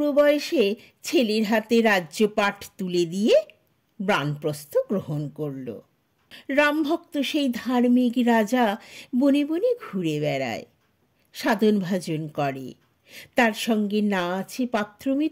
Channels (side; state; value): both; identical; correlation 1.00